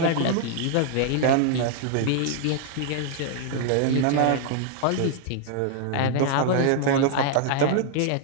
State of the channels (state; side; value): different; both; correlation 0.00